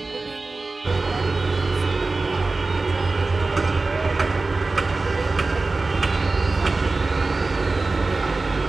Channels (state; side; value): quieter; left; 3.6 dB